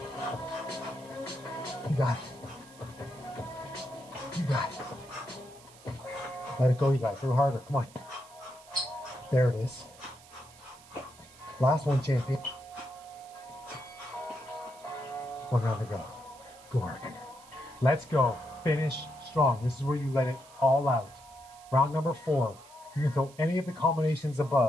You got it. You got it. Let it go, you guys. A little harder. Come on. There it is. Last one, champion. 1 round to go. Good work. Let's go. Finish strong. This is where you let it all out. Round number 4. You can throw any of the combinations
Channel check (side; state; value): right; noise; hiss, 23 dB below the sound